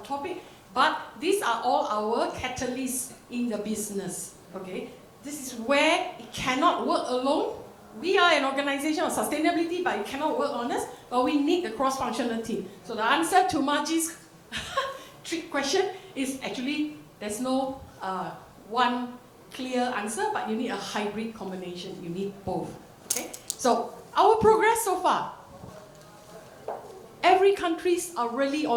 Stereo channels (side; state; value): both; identical; correlation 1.00